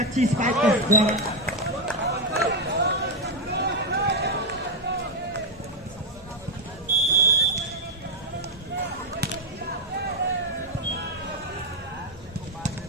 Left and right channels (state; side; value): normal; both; correlation 0.01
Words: स्पाइक के द्वारा।